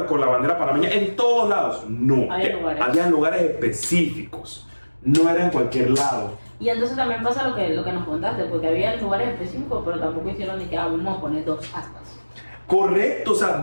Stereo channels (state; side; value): inverted; both; correlation -1.00